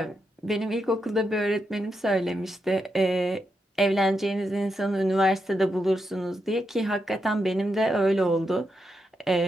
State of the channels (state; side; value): normal; both; correlation 0.84